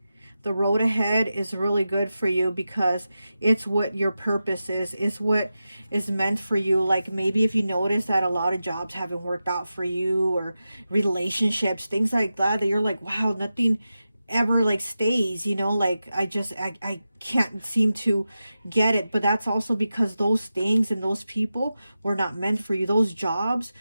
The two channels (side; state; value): both; inverted; correlation -0.92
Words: The road ahead is really good for you, because it's what your purpose is. It's what is meant for you. Like maybe if you notice that a lot of jobs haven't worked out for you, or relationships, things like that, that you're like, wow, nothing ever like stays, you know, like I can't seem to get it. But that's also because those things and those people were not meant for you. Those jobs